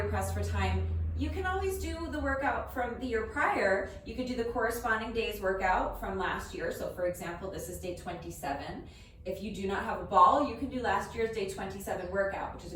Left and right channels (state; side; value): identical; both; correlation 1.00